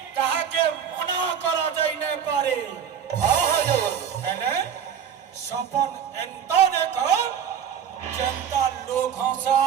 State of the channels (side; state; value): left; quieter; 8.2 dB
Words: কাহাকে মনা করা যাই না পারে हाँ हजूर হেলে সপন এন্ত দেখ যেন্তা লোক